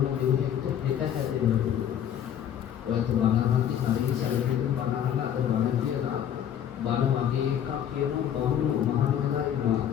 දෙයකට පිට හැදෙනවා. ඔයත් බණහන්ති හරි සැලකෙන්න බණහන අද බණ කියලා බණ වගේ එකක් කියන බමුණු මහානලා ඉන්නවා.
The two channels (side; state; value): right; quieter; 9.8 dB